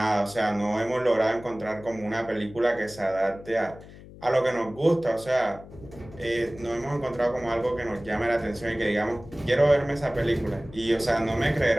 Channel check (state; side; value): noise; left; hum, 18 dB below the sound